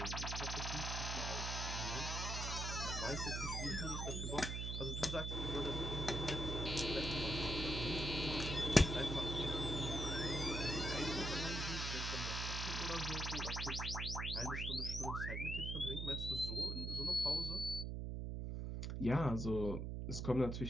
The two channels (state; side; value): noise; right; hum, 2 dB below the sound